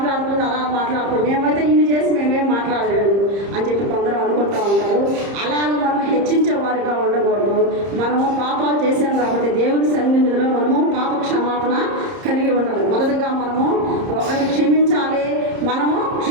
అలా మాట్లాడుతుంది, మేమైతే ఇన్ని చేసి మేమేం మాట్లాడలేదు అని చెప్పి కొందరు అనుకుంటూ ఉంటారు. అలాగ మనం హెచ్చించే వారిగా ఉండకూడదు. మనము పాపాలు చేసాం కాబట్టి దేవుని సన్నిధిలో మనము పాప క్షమాపణ కలిగి ఉండాలి. మొదటగా మనము ఒకరిని క్షమించాలి, మనము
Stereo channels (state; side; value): late; left; 30 ms